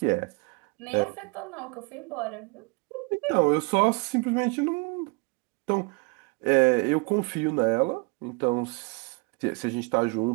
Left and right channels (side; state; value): left; quieter; 30.2 dB